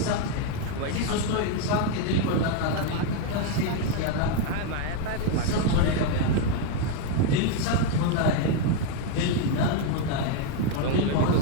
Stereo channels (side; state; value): both; different; correlation 0.01